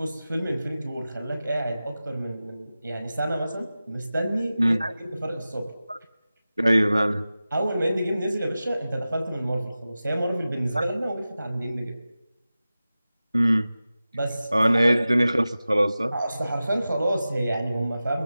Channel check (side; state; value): both; inverted; correlation -0.95